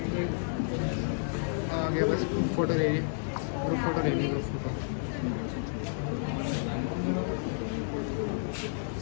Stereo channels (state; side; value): silent; right; digital silence